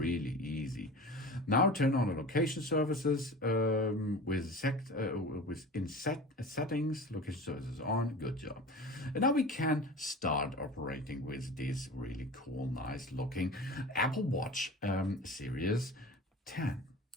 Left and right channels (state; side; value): normal; both; correlation 0.36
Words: easy. Now turn on the location services in settings. Location services on. Good job. And now we can start operating with this really cool, nice looking Apple Watch Series 10.